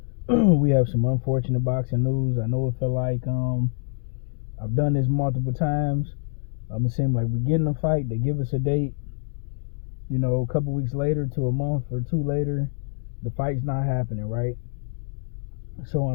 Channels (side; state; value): right; silent; digital silence